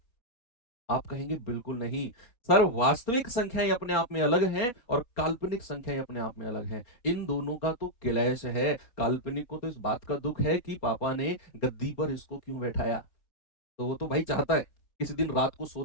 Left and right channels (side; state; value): right; late; 4.1 ms